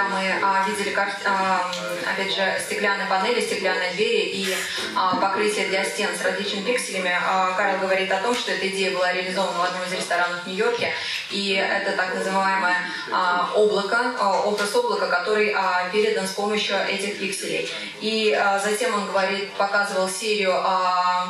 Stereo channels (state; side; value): identical; both; correlation 1.00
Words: мы видели, опять же, стеклянные панели, стеклянные двери и покрытие для стен с различными пикселями, Карл говорит о том, что эта идея была реализована в одном из ресторанов в Нью-Йорке, и это так называемое облако, образ облака, который передан с помощью этих пикселей. И затем он говорит, показывал серию